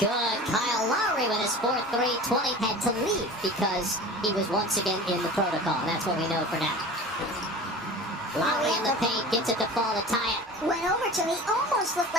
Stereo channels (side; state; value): both; normal; correlation 0.37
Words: Kyle Lowry with his 4th 3. 20 had to leave because he was once again in the protocol. That's what we know for now. Lowry in the paint, gets it to fall to tie it. Went over to him. He almost looked